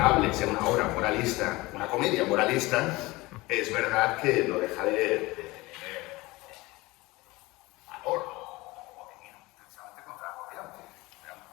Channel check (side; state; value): right; quieter; 21.4 dB